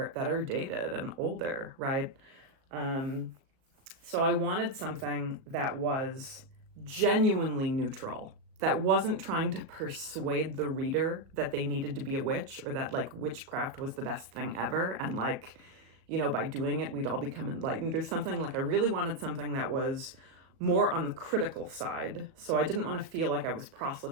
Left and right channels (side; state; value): left; late; 37 ms